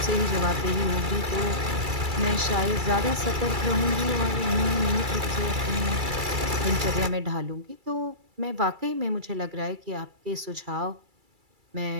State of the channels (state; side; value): late; left; 2.3 ms